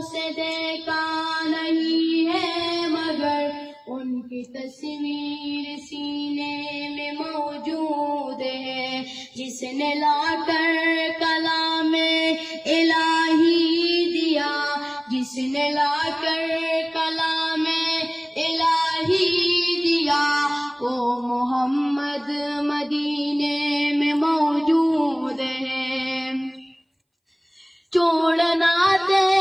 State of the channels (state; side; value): identical; both; correlation 1.00